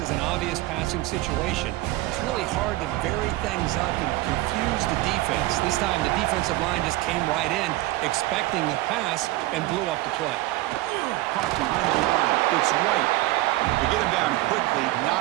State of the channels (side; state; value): left; quieter; 18.1 dB